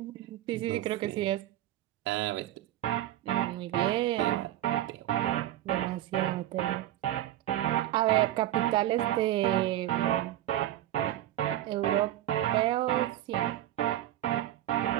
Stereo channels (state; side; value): quieter; left; 13.5 dB